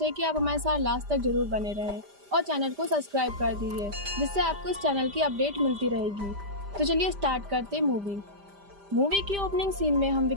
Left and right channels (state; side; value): late; left; 5.0 ms